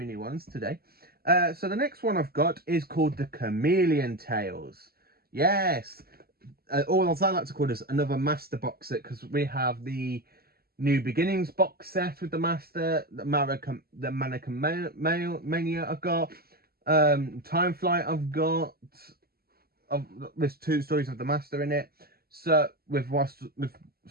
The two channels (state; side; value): late; left; 0.45 ms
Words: new ones today. So the next one I've got is called The Chameleon Tales. Yes, or as I like to call this, another Master box set, because we have the New Beginnings box set with the Master, the Mannequin Mania I've got, Time Flight I've got. There's 2 stories of the Master in it. So